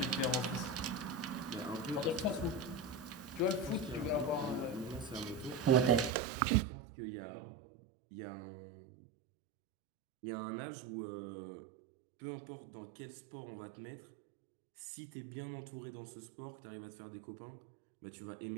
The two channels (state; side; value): drops out; left; at 6.1 s